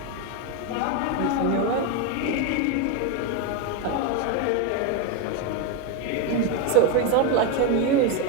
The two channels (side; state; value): both; different; correlation 0.02